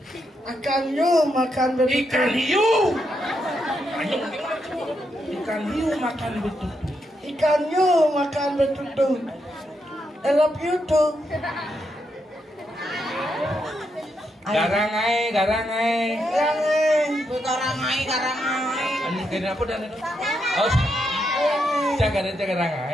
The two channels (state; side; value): normal; both; correlation 0.81